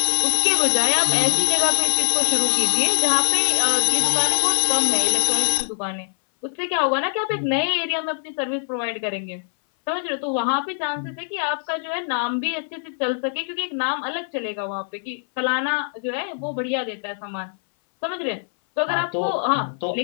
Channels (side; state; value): right; silent; 60 dB below the other